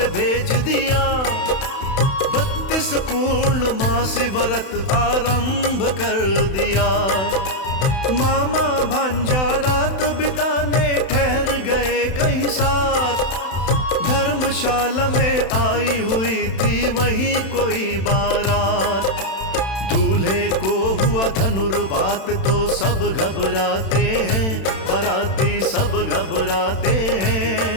भेज दिया, 32 पूर्णमासी व्रत आरंभ कर दिया। मामा भांजा रात बिताने ठहर गए कहीं साथ, धर्मशाला में आई हुई थी वहीं कोई बारात। दूल्हे को हुआ धनुर्वात तो सब घबराते हैं, बाराती सब घबराते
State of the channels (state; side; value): late; right; 31 ms